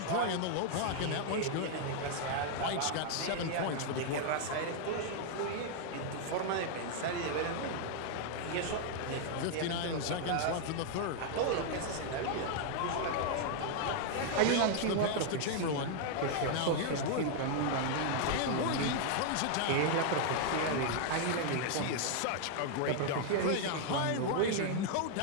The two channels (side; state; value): both; different; correlation 0.00